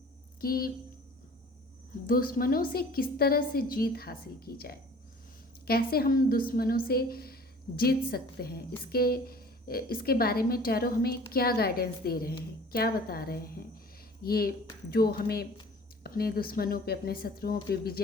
कि दुश्मनों से किस तरह से जीत हासिल की जाए, कैसे हम दुश्मनों से जीत सकते हैं। इसके बारे में टैरो हमें क्या गाइडेंस दे रहे हैं, क्या बता रहे हैं, ये जो हमें अपने दुश्मनों पे, अपने शत्रुओं पे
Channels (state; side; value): normal; both; correlation 0.47